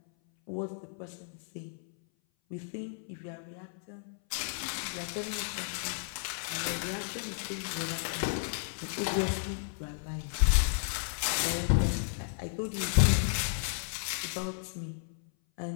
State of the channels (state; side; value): silent; right; 56 dB below the other